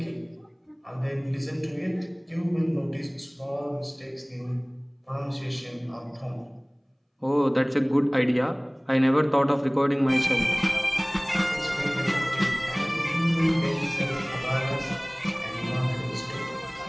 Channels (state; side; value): identical; both; correlation 1.00